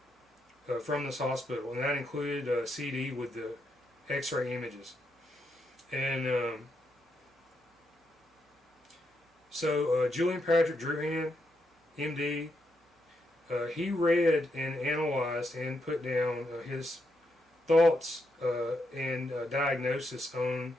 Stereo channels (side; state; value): both; normal; correlation 0.80